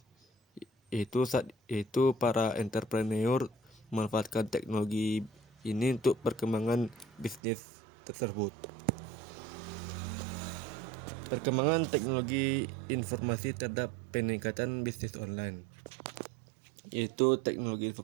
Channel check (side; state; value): left; drops out; at 7.4 s